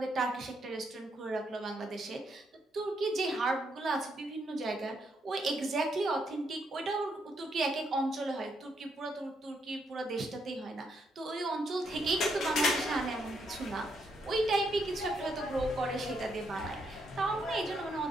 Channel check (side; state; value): both; normal; correlation 0.76